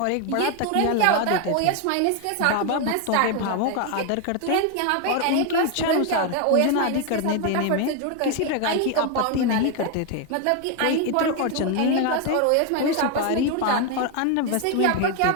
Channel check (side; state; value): both; different; correlation 0.01